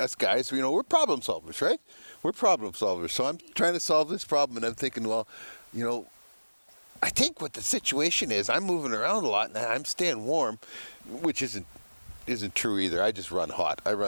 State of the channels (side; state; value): both; inverted; correlation -1.00